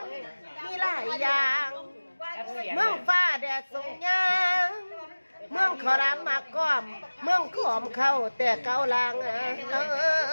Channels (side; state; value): both; inverted; correlation -1.00